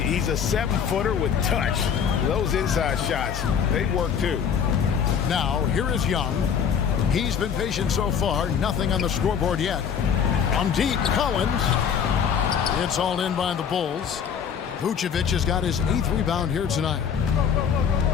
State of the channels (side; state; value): right; quieter; 7.5 dB